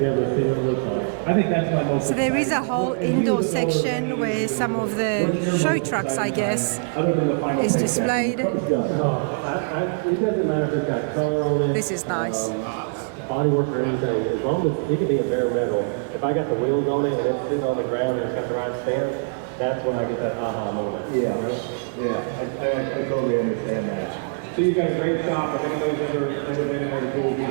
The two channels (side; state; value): left; silent; 63 dB below the other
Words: I think that's my most. So there is a whole indoor section where some of the show trucks, I guess, is displayed. It doesn't matter if it's got color on it. This is nice. Bodywork or anything, as long as it could be a bare metal. If I got the wheels on it and it's sitting on the ground and it's got the right stance, that's when I get that aha moment. Yeah, I totally understand that. So you've got a great shop. If anybody's ever been there, the pool,